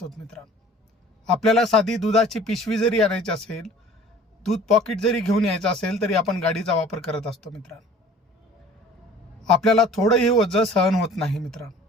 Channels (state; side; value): normal; both; correlation 0.48